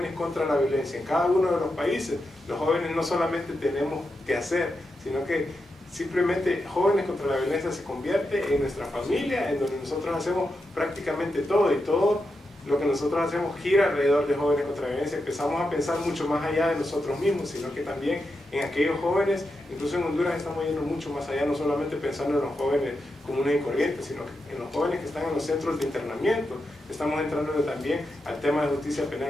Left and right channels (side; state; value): both; normal; correlation 0.87